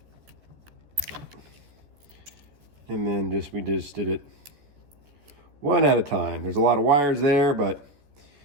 And then we just did it one at a time. There's a lot of wires there, but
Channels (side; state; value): left; late; 14 ms